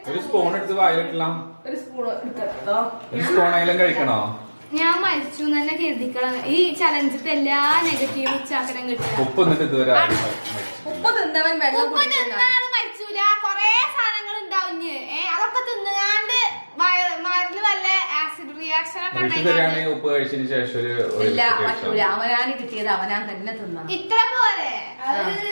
ഒരു സ്പൂൺ എടുത്ത് വായിലിട്ടില്ല. ഒരു സ്പൂൺ എടുത്തോ. ഒരു സ്പൂണായാലും കഴിക്കണോ? ഞാൻ മരിച്ചു തന്നെ കരുതിക്കണം. ഈ ചലഞ്ചിട്ട് എല്ലാ നെഗറ്റീവ് ഉച്ചാക്കരം കിട്ടും. ഉപ്പ് എന്നിട്ട് ഇതുവരെ ഉപ്പ് തിന്നവൻ വെള്ളം മരിച്ചൂല. കൊറേ സാധനങ്ങൾ ഉണ്ടാവും. അതൊക്കെ തിന്നുകാണ്ട് മരുന്ന് വല്ല ആസിഡ് റിയാക്ഷൻ ഒക്കെ ഉപ്പ് കഴിച്ചതിന് ശേഷം ഇല്ല പറ്റൂല. അവനാണ് കിട്ടിയത്, അവനാൻ തന്നെ തിന്നണം. ഇത്ര പോലെ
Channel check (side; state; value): both; inverted; correlation -1.00